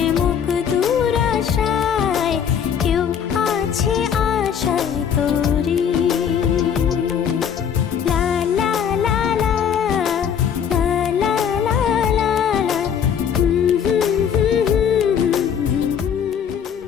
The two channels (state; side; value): quieter; right; 8.0 dB